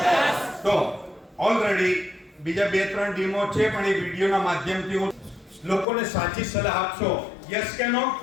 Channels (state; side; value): drops out; right; at 5.9 s